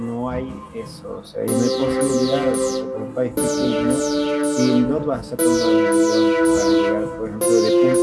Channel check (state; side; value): identical; both; correlation 1.00